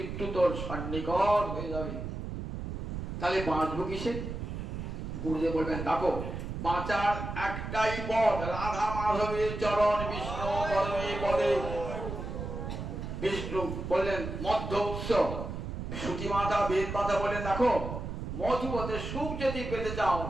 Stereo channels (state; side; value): noise; right; rumble, 6 dB below the sound